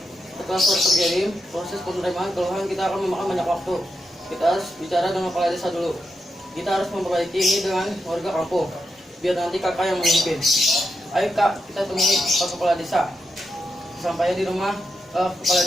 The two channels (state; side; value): normal; both; correlation 0.86